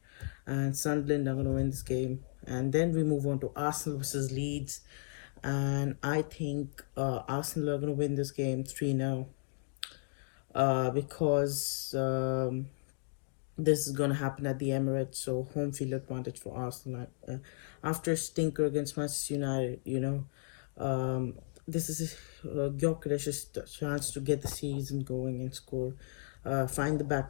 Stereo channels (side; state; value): right; silent; digital silence